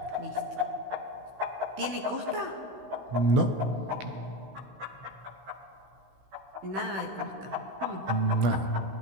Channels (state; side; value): late; left; 16 ms